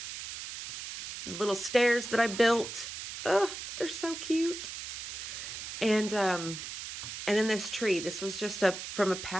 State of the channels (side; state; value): right; noise; hiss, 8 dB below the sound